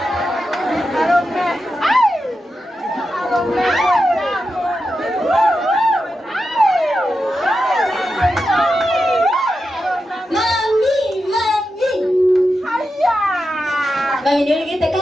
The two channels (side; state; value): both; normal; correlation 0.89